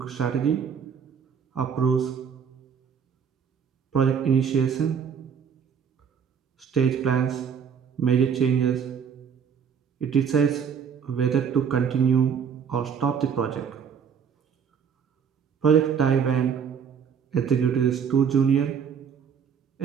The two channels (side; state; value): left; quieter; 7.1 dB